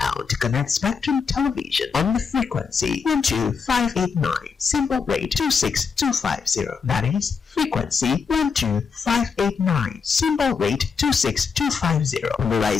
to connect Spectrum Television on the frequency 12589, symbol rate 26250. That is frequency 12589, symbol rate 26250.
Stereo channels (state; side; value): quieter; right; 5.7 dB